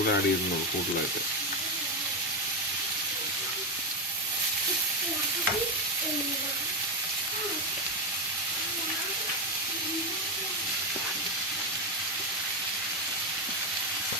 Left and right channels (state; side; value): normal; both; correlation 0.09